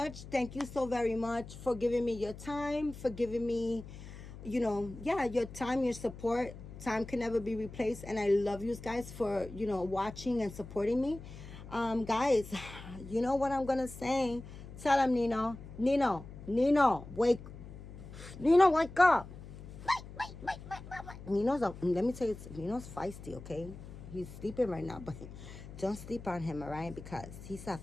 Thank you so very much for giving me your time, for giving me, you know, yeah, your time, your support. Time can never be replaced. And I love you guys for, you know, watching and supporting me. Guys, you know what I'm going to say? Tell them, Nino, wake. Nino, wake up. Nino's up. Let me tell you, Nino's feisty, okay? He's sleeping right now, but don't sleep on him, all right? Because he's a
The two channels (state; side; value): noise; left; hum, 14 dB below the sound